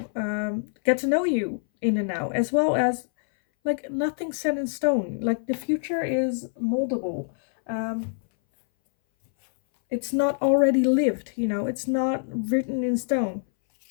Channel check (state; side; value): silent; right; 62 dB below the other